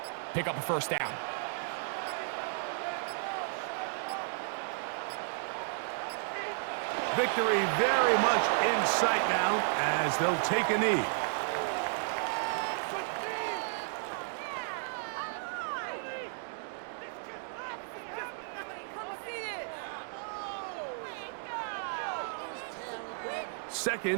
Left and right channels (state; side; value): silent; left; digital silence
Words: pick up a 1st down. Victory very much in sight now as they'll take a knee.